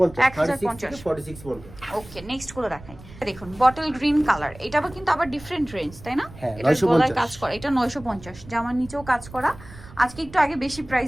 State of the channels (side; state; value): right; noise; rumble, 18 dB below the sound